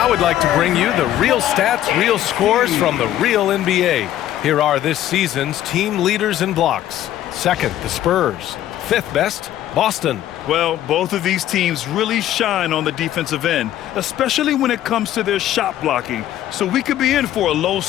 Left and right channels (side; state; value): right; quieter; 12.5 dB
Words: Now we'd like to bring you the real stats, real scores from the real NBA. Here are this season's team leaders in blocks. Second, the Spurs. Fifth best, Boston. Well, both of these teams really shine on the defensive end, especially when it comes to their shot blocking. So we could be in for a